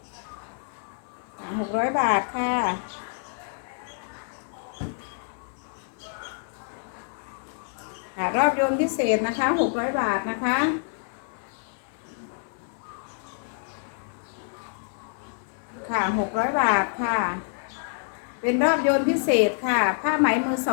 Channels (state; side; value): silent; right; 60 dB below the other